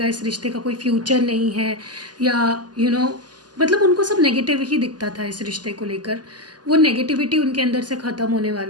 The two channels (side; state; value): left; late; 0.70 ms